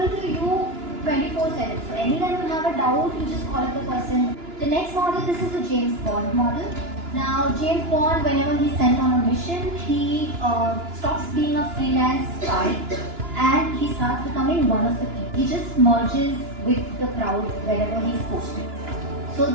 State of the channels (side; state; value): left; late; 2.9 ms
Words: to you 24/7. So anytime you have a doubt, you just call up the person. The next model, this is the James Bond model. Now, James Bond, whenever he's sent on a mission, he stops being a freelance spy and he starts becoming one of the people. He just merges with the crowd wherever he's posted. So